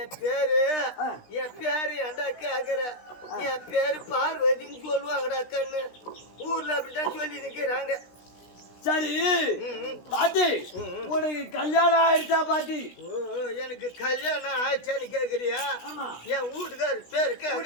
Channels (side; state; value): right; late; 16 ms